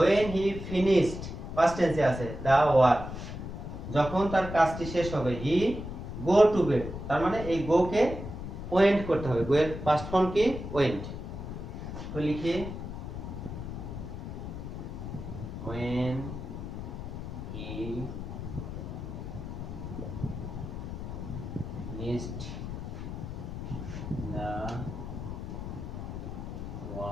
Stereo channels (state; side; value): noise; left; rumble, 7 dB below the sound